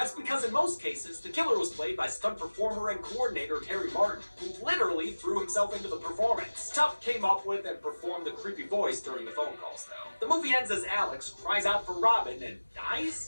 because in most cases, the killer was played by stunt performer and coordinator Terry Martin, who literally threw himself into the performance. Tuff came up with and performed the creepy voice during the phone calls, though. The movie ends as Alex cries out for Robin and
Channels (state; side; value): inverted; both; correlation -1.00